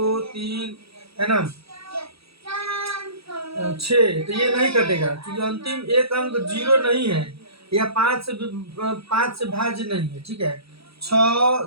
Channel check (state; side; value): late; left; 0.77 ms